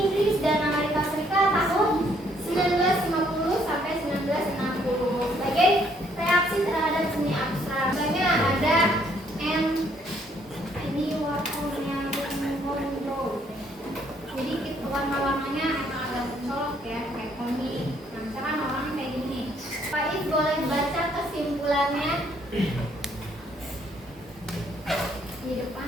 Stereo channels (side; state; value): both; normal; correlation 0.67